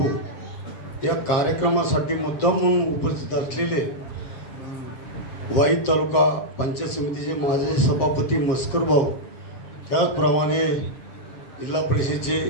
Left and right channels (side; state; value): right; late; 7.5 ms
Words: या कार्यक्रमासाठी मुद्दाम म्हणून उपस्थित असलेले वाई तालुका पंचायत समितीचे माजी सभापती मस्कर भाऊ, त्याचप्रमाणे जिल्हा परिषदेचे